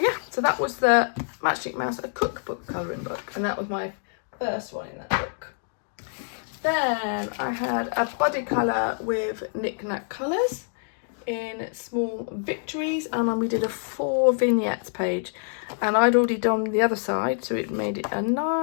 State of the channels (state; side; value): silent; right; digital silence